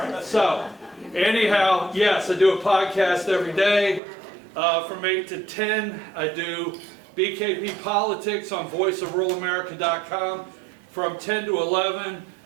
so anyhow, yes, I do a podcast every day from 8 to 10. I do BKP Politics on voiceofruralamerica.com from 10 to 11.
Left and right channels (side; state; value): left; drops out; at 4.0 s